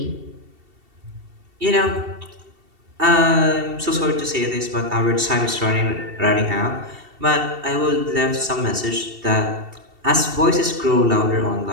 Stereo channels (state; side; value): late; left; 2.7 ms